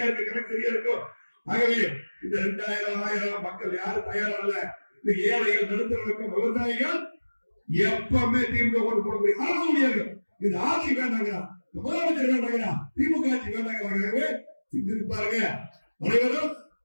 இருக்கு, கணக்கு சரியா இருக்கும். ஆகவே இந்த 2000 1000 மக்கள் யாரும் தயாரா இல்ல. இந்த ஏழைகள், நடுத்தரவர்க்கம், விவசாயிகள் எப்பவுமே திமுக ஓட்டு போட முடியும். அரசு முடியாது. இந்த ஆட்சி வேண்டாங்க, முதலமைச்சர் வேண்டாங்க, திமுக ஆட்சி வேண்டாங்க. சிந்தித்து பாருங்க. அனைவரும்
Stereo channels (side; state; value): both; inverted; correlation -1.00